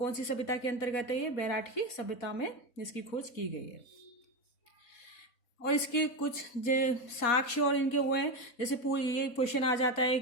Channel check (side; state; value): right; late; 4.2 ms